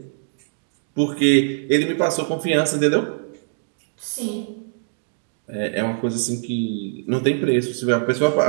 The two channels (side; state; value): left; silent; digital silence